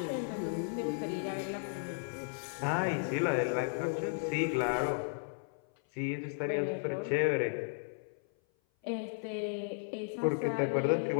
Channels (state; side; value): silent; right; 55 dB below the other